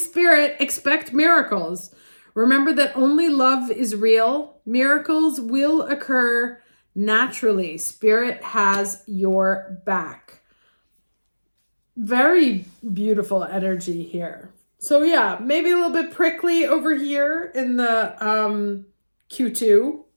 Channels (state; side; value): inverted; both; correlation -1.00